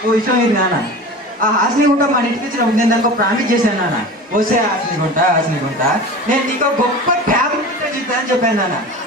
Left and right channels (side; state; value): both; normal; correlation 0.34